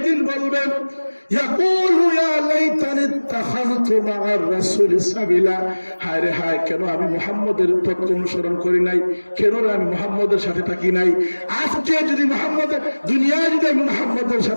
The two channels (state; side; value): inverted; both; correlation -1.00